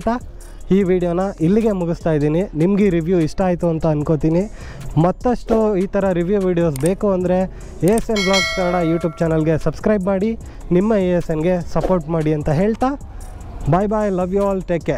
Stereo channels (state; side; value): identical; both; correlation 1.00